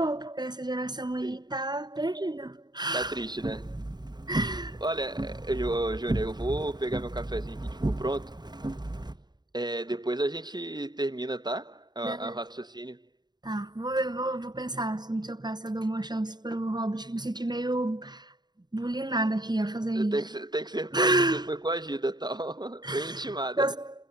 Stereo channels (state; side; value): late; left; 0.20 ms